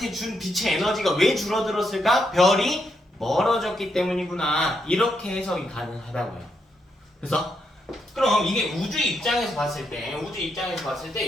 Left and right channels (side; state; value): both; normal; correlation 0.80